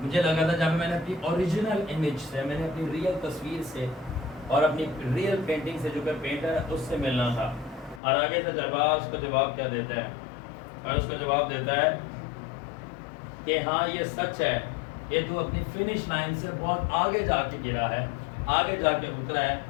لگا تھا، جہاں پہ میں نے اپنی اوریجنل امیج سے، میں نے اپنی ریئل تصویر سے اور اپنی ریئل پینٹنگ سے جو کہ پینٹر ہے اس سے ملنا تھا۔ اور آگے سے تجربہ اس کو جواب کیا دیتا ہے، اور اس کو جواب دیتا ہے کہ ہاں یہ سچ ہے کہ تو اپنی فنش لائن سے بہت آگے جا کے گرا ہے، آگے جا کے اترا ہے،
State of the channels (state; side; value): drops out; right; at 8.0 s